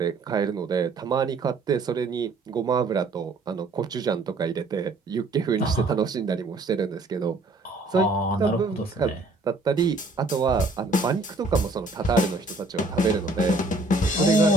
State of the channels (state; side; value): quieter; left; 3.1 dB